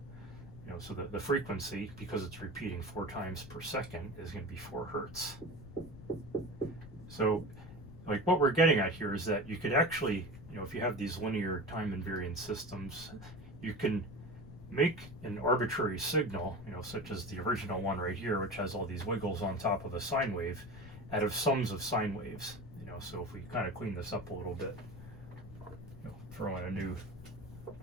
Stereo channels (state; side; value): noise; left; rumble, 14 dB below the sound